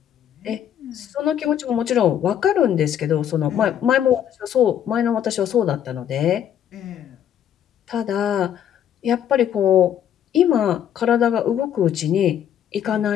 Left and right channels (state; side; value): quieter; right; 9.8 dB